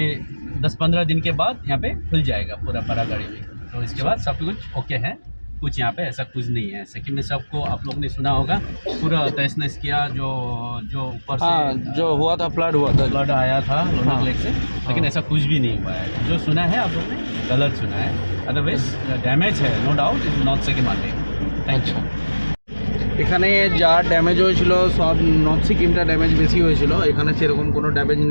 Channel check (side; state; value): both; inverted; correlation -1.00